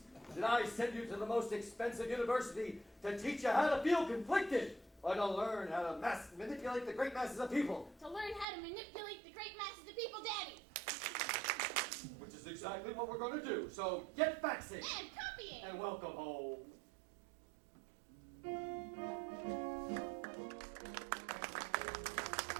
Did I send you to the most expensive university to teach you how to feel conflicted? Or to learn how to manipulate the great masses of people? To learn how to manipulate the great masses of people, Daddy. Which is exactly what we're going to do. So get faxing. And copying. And welcome home.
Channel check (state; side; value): drops out; left; at 8.5 s